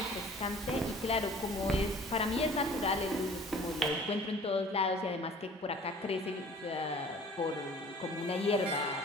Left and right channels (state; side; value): normal; both; correlation 0.49